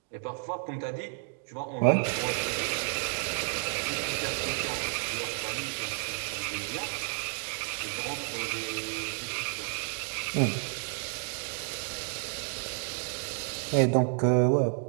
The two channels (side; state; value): left; silent; 57 dB below the other